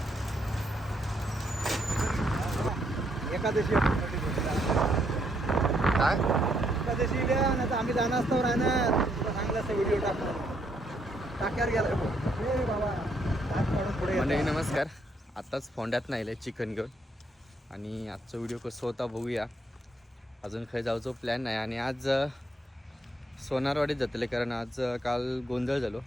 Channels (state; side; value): normal; both; correlation 0.73